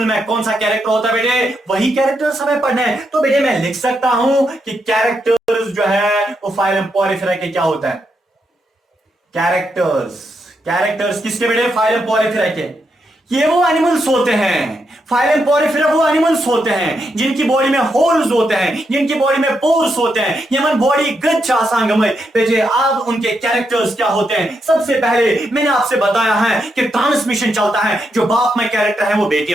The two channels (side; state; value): both; normal; correlation 0.81